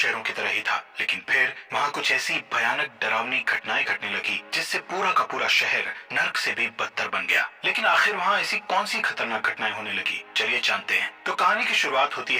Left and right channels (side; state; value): both; identical; correlation 1.00